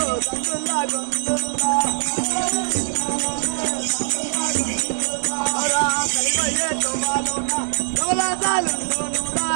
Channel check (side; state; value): left; silent; digital silence